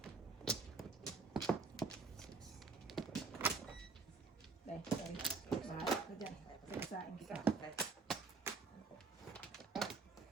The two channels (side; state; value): left; quieter; 4.5 dB